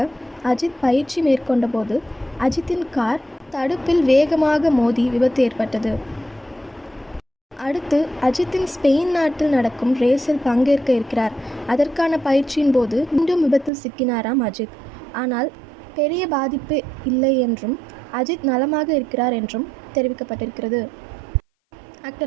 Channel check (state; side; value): drops out; left; at 13.7 s